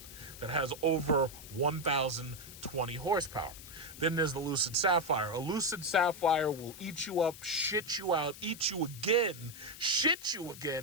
that has over 1,020 horsepower. Then there's the Lucid Sapphire. A Lucid Sapphire will eat you up, shit you out, eat you again, shit you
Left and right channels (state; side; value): noise; left; hiss, 15 dB below the sound